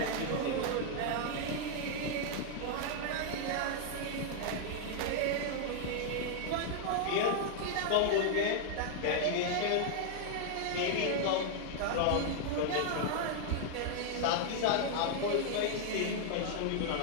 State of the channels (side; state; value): both; different; correlation 0.00